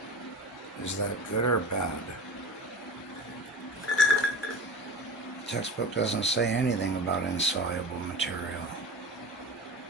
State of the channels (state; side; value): normal; both; correlation 0.34